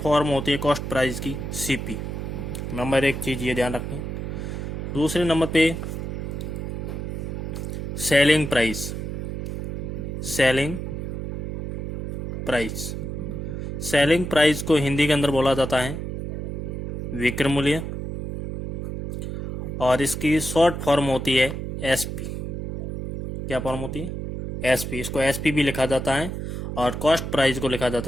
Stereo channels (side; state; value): right; noise; hum, 5 dB below the sound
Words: होती है कॉस्ट प्राइस की सीपी। नंबर एक चीज़ ये ध्यान रखें। दूसरे नंबर पे selling price. Selling price selling price को हिंदी के अंदर बोला जाता है विक्रय मूल्य, और इसकी शॉर्ट फॉर्म होती है एसपी। क्या फॉर्म होती है? एसपी। इसको एसपी भी लिखा जाता है और कॉस्ट प्राइस को लिखा